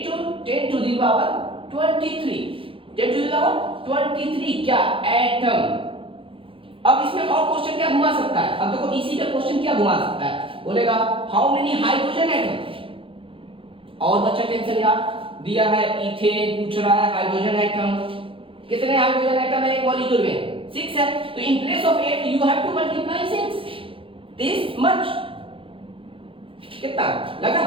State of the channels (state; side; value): late; left; 0.26 ms